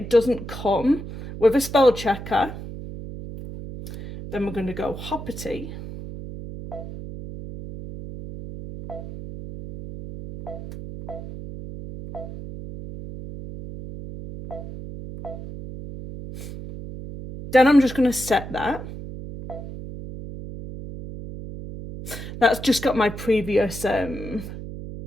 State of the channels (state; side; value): noise; right; hum, 10 dB below the sound